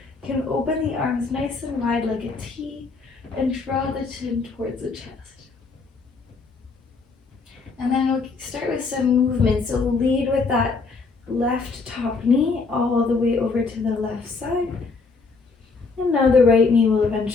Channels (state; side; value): quieter; right; 4.3 dB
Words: You can open the arms nice and wide like a T and draw the chin towards the chest. And then we'll start with some movement. So we'll lead with that left top knee all the way over to the left side. And now the right knee will